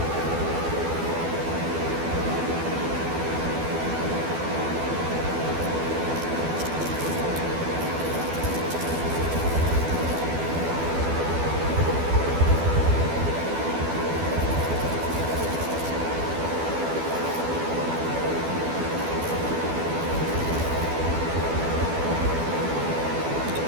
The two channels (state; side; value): late; left; 12 ms